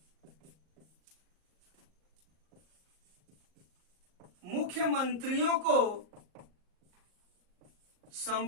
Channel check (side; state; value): left; late; 38 ms